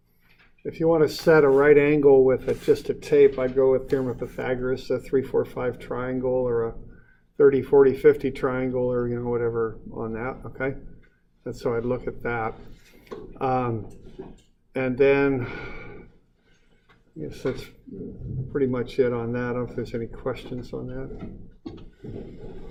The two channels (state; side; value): identical; both; correlation 1.00